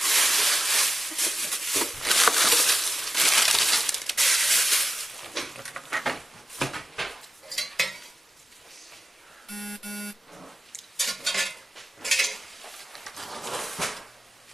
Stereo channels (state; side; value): normal; both; correlation 0.91